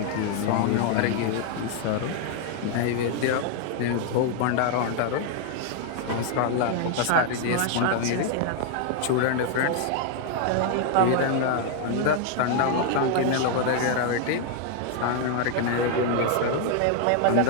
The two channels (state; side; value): different; both; correlation 0.00